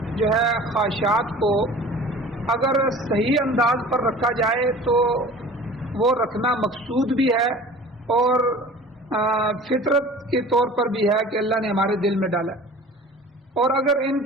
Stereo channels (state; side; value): normal; both; correlation 0.42